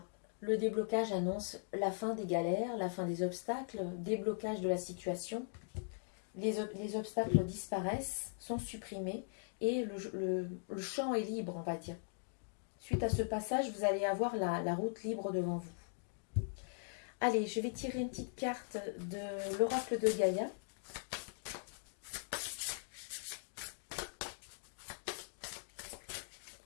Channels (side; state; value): right; silent; digital silence